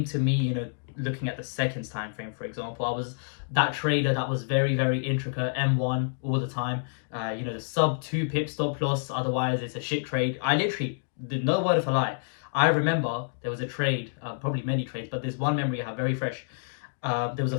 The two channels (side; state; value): right; silent; digital silence